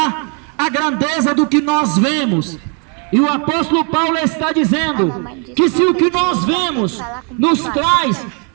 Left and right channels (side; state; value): left; quieter; 38.0 dB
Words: a grandeza do que nós vemos. E o apóstolo Paulo está dizendo que se o que nós vemos nos traz